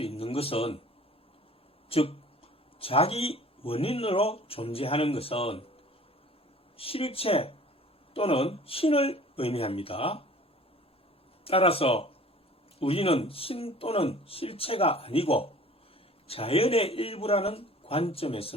있는 것은, 즉 자기 원인으로 존재하는 것은 실체 또는 신을 의미합니다. 따라서 우리는 신 또는 실체가 아니고 자연의 일부라는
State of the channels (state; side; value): normal; both; correlation 0.48